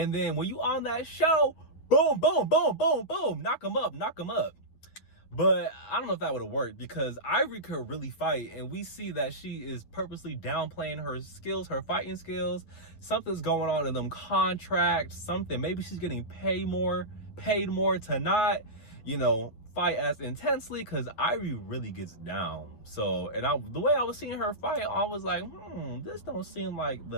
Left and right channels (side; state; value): right; late; 9.3 ms